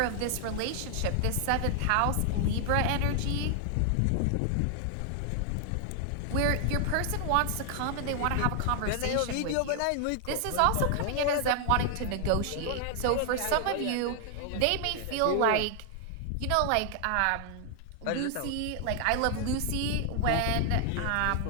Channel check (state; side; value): different; both; correlation 0.00